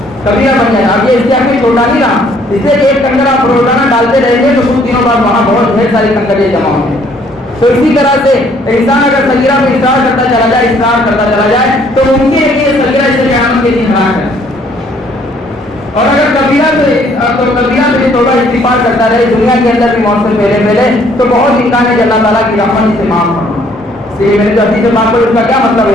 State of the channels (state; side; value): normal; both; correlation 0.63